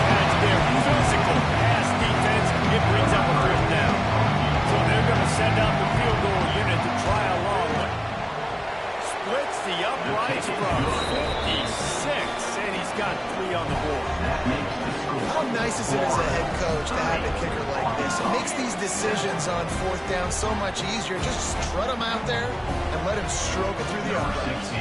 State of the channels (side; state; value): both; identical; correlation 1.00